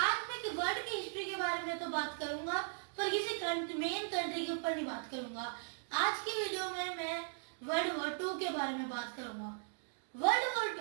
मैं वर्ल्ड की हिस्ट्री के बारे में तो बात करूंगा, पर किसी मेन कंट्री के ऊपर नहीं बात करूंगा। आज की वीडियो में मैं वर्ल्ड वॉर 2 के बारे में बात करूंगा। वर्ल्ड वॉर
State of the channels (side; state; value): left; silent; digital silence